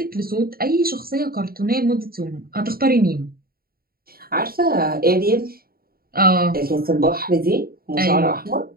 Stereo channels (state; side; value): late; left; 0.43 ms